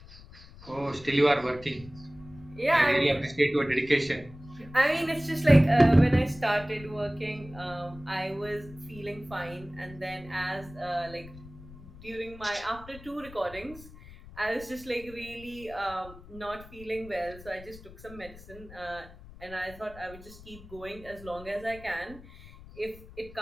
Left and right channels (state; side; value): noise; left; rumble, 18 dB below the sound